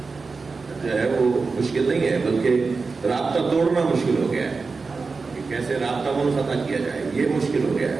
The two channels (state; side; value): quieter; left; 4.4 dB